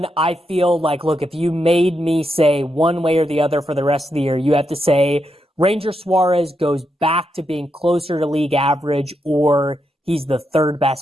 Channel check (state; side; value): normal; both; correlation 0.83